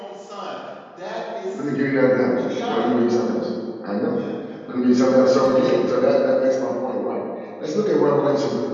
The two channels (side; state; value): both; identical; correlation 1.00